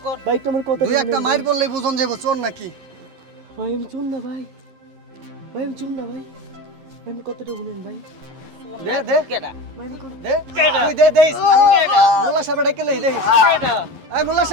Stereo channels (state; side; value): late; left; 11 ms